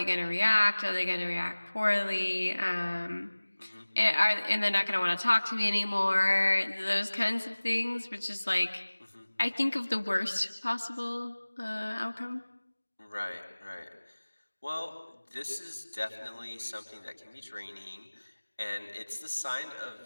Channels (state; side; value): inverted; both; correlation -1.00